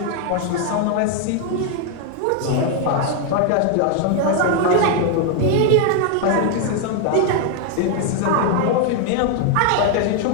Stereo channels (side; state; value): both; different; correlation 0.00